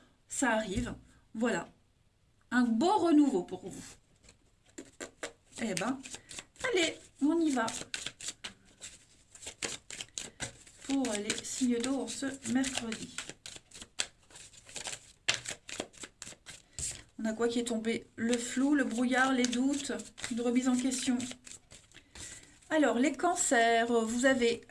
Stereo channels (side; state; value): both; identical; correlation 1.00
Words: ça arrive. Voilà, un beau renouveau pour vous. Eh ben, allez, on y va. Pour les signes d'eau en ce mercredi. On a quoi qui est tombé? Le flou, le brouillard, les doutes, une remise en question. Alors, les cancers, vous avez